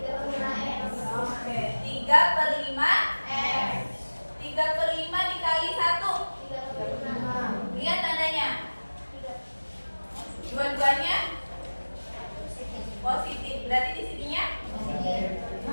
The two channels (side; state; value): both; inverted; correlation -1.00